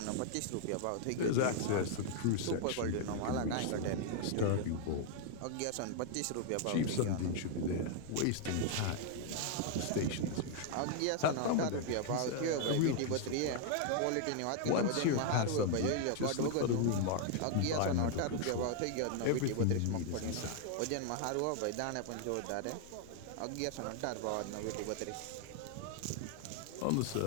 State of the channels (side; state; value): both; different; correlation 0.00